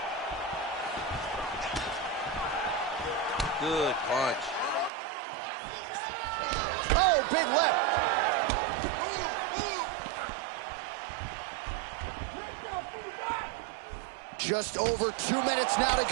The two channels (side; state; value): left; drops out; at 4.9 s